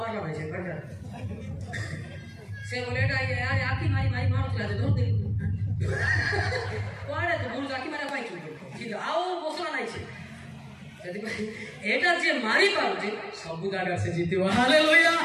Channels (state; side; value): identical; both; correlation 1.00